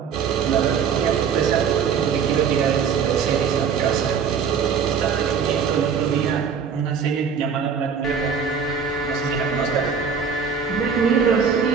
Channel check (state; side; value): quieter; left; 6.6 dB